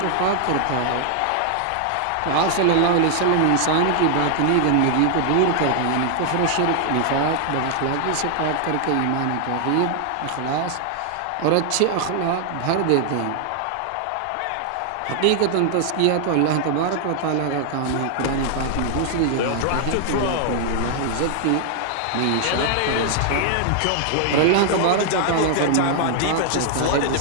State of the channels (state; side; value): different; both; correlation 0.00